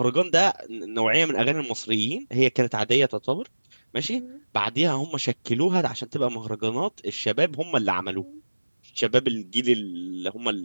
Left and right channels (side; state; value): both; inverted; correlation -1.00